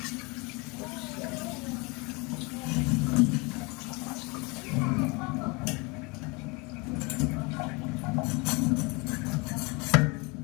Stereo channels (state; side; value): quieter; right; 27.9 dB